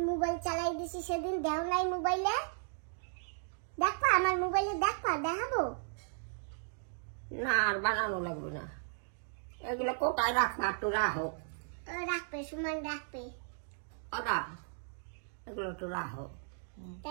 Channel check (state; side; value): silent; left; digital silence